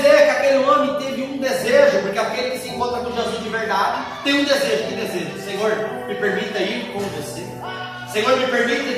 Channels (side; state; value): both; identical; correlation 1.00